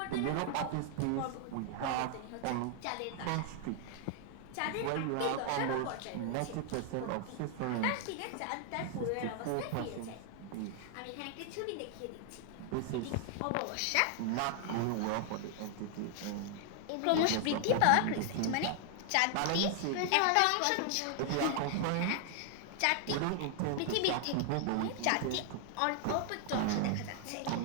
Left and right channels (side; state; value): both; different; correlation 0.00